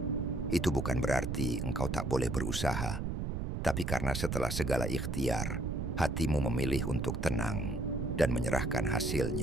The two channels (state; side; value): noise; right; rumble, 2 dB below the sound